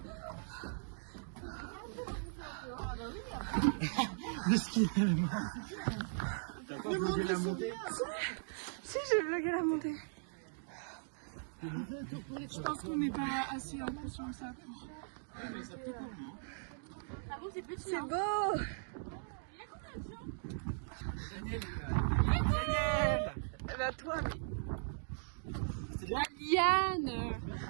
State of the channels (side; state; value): left; silent; digital silence